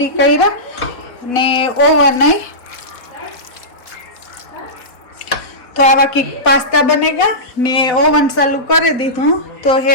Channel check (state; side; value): late; right; 4.1 ms